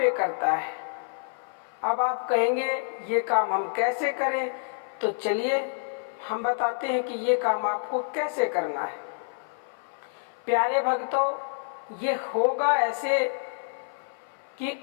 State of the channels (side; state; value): right; silent; 55 dB below the other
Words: करता है। अब आप कहेंगे ये काम हम कैसे करें, तो चलिए हम बताते हैं कि ये काम आपको कैसे करना है। प्यारे भक्तों, ये होगा ऐसे